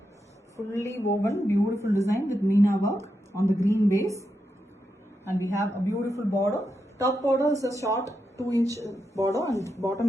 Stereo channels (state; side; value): normal; both; correlation 0.86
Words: Fully woven, beautiful design with Meena work on the green base, and we have a beautiful border. Top border is a short 2-inch border, and